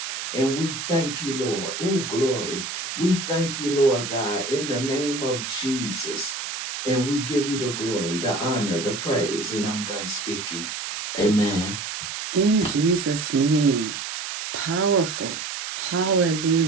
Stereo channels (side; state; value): right; noise; hiss, 6 dB below the sound